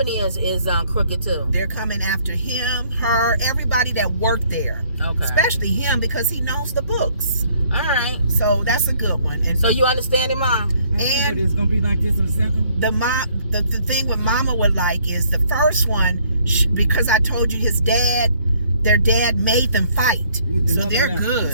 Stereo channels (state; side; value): inverted; both; correlation -0.64